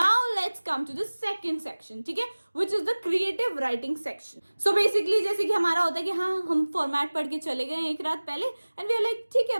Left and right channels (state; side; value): inverted; both; correlation -1.00